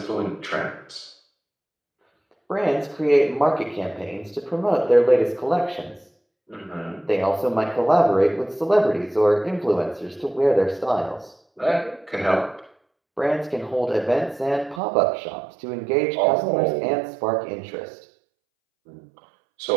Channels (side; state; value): left; drops out; at 14.8 s